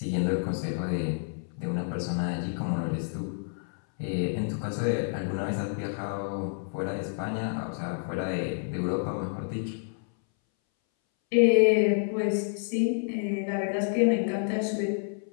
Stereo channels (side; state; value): right; silent; 59 dB below the other